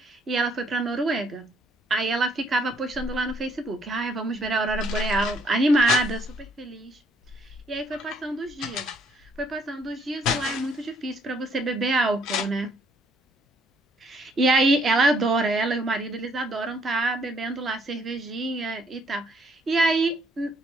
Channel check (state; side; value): normal; both; correlation 0.67